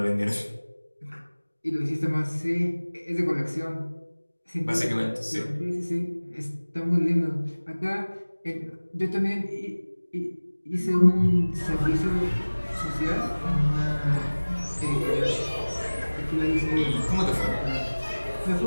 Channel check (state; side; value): inverted; both; correlation -1.00